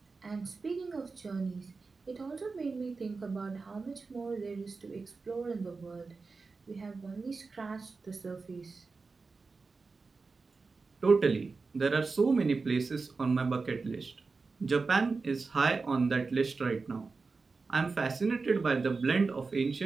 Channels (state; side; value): quieter; left; 4.2 dB